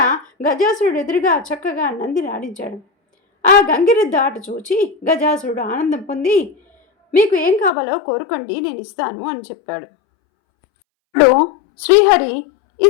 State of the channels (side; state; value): right; drops out; at 7.7 s